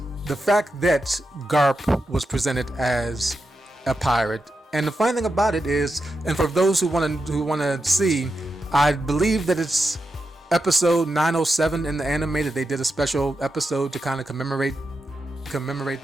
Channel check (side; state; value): both; normal; correlation 0.88